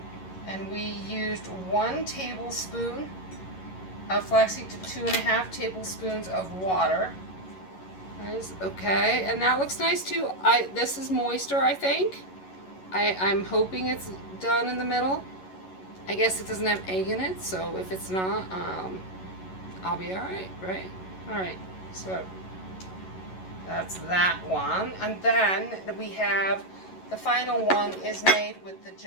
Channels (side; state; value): right; late; 11 ms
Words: and we used 1 tablespoon of flaxseed to 2.5 tablespoons of water. Nice. Okay, and that looks nice too. This is moister, I think. I'm hoping it's done in the middle. I guess it doesn't have egg in it, so if it's not, I'll be all right, right? All right. So that's that one, and then we have the final one is made with the